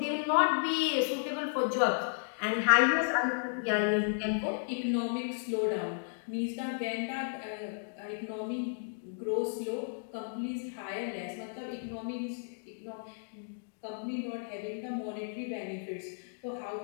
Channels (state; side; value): silent; right; digital silence